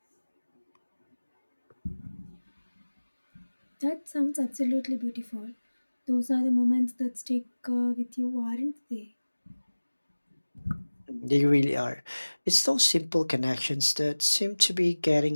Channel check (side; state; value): both; inverted; correlation -1.00